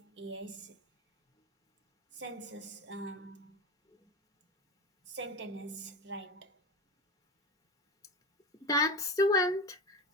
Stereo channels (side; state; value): both; normal; correlation 0.23